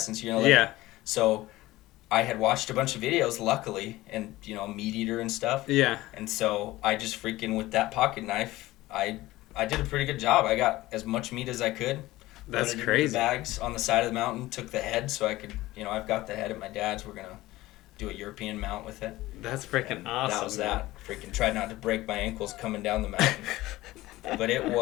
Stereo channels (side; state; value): right; quieter; 17.8 dB